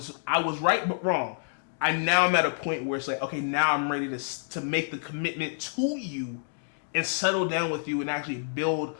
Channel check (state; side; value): silent; right; 59 dB below the other